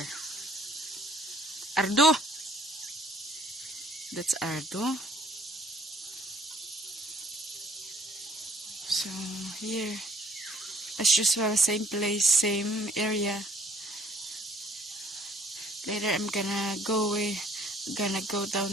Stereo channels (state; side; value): normal; both; correlation 0.60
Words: Ardo! That's Ardo. So here, as usual, same place, same area. Later I'm gonna go down